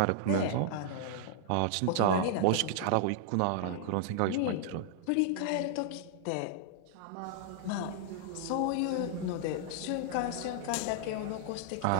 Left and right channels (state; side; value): different; both; correlation -0.01